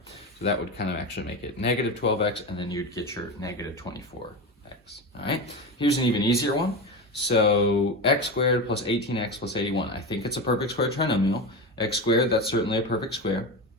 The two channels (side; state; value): both; normal; correlation 0.21